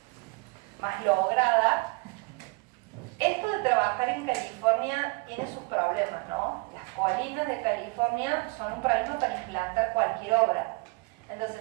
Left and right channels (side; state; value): left; quieter; 29.3 dB